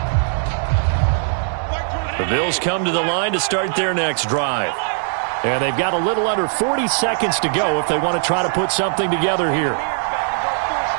The Bills come to the line to start their next drive. And they've got a little under 40 seconds to go if they want to try to put something together here.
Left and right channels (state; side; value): silent; left; digital silence